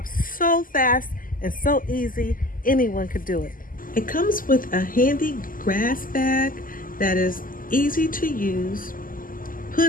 so fast and so easy, anyone could do it. It comes with a handy grass bag that is easy to use,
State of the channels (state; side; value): late; right; 0.41 ms